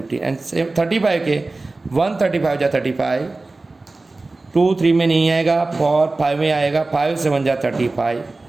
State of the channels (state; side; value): quieter; left; 3.3 dB